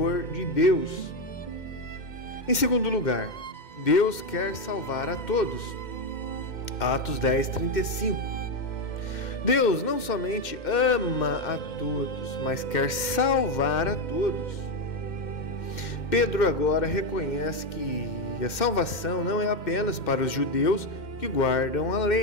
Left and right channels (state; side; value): late; right; 2.1 ms